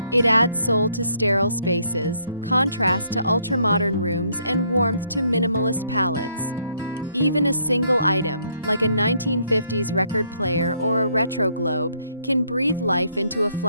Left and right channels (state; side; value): inverted; both; correlation -0.70